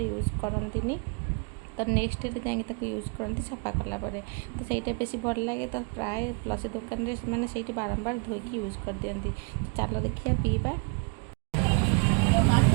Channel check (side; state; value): left; quieter; 35.3 dB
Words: ୟୁଜ୍ କରନ୍ତିନି ତ ନେକ୍ସଟ ଡେରେ ଯାଇକି ତାକୁ ୟୁଜ୍ କରନ୍ତି ସଫା କଲା ପରେ ତ ସେଇଟା ବେଶୀ ଭଲ ଲାଗେ ତ ପ୍ରାୟ ଲସି ଦୋକାନରେ ସେମାନେ ସେଇଠି ବାରମ୍ବାର ଧୋଇକି ୟୁଜ୍ କରିଦିଅନ୍ତି ତ ଚାଲ ଦେଖିବା ପିଇବା